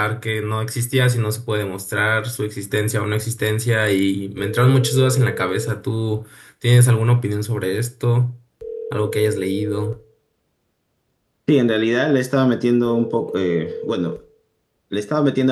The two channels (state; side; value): identical; both; correlation 1.00